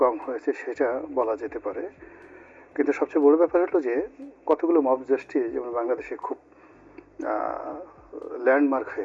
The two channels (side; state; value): both; identical; correlation 1.00